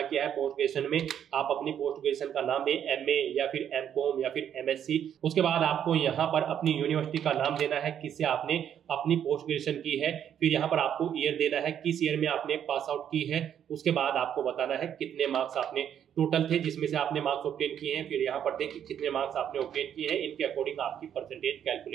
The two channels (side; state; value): left; quieter; 9.3 dB